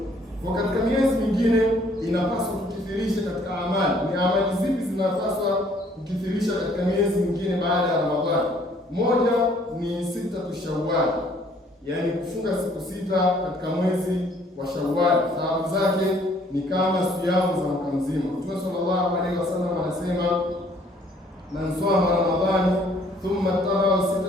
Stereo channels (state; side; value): normal; both; correlation 0.61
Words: Kwa katika miezi mingine inapaswa kukithirisha katika amali. Ni amali zipi zinapaswa kukithirisha katika miezi mingine baada ya Ramadhani? Moja ni sitatu Shawwal, yaani kufunga siku 6 katika mwezi wa Shawwal. Thawabu zake ni kama siyamu za mwaka mzima. Mtume sallallahu alaihi wasallam anasema, man sama Ramadhani thumma taba'a